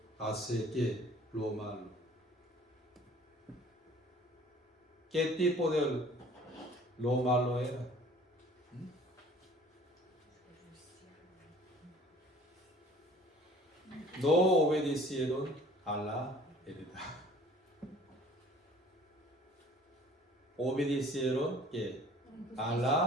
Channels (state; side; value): normal; both; correlation 0.51